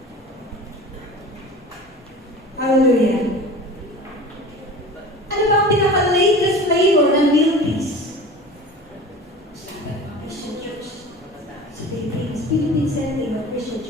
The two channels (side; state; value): both; normal; correlation 0.37